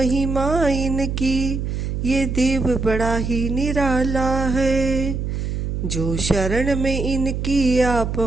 इनकी, ये देव बड़ा ही निराला है। जो शरण में इनकी आ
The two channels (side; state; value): right; noise; hum, 3 dB below the sound